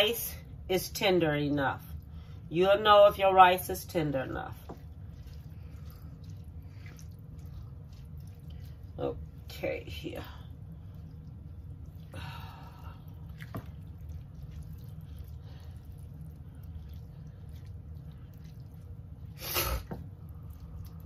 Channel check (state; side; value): identical; both; correlation 1.00